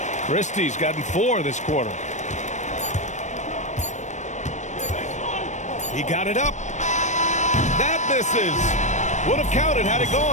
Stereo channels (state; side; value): late; right; 0.34 ms